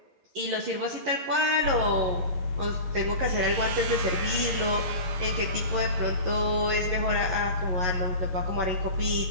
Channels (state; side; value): late; left; 11 ms